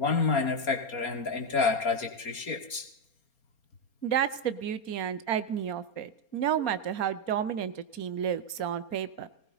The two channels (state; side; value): late; right; 4.3 ms